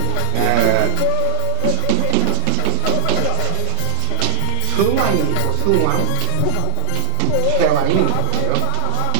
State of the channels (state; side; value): different; both; correlation -0.01